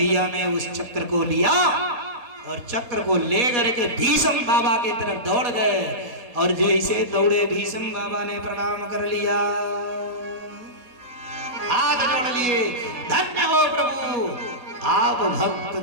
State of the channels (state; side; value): late; left; 4.1 ms